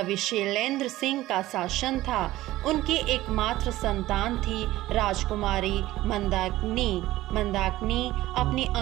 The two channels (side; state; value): left; quieter; 16.3 dB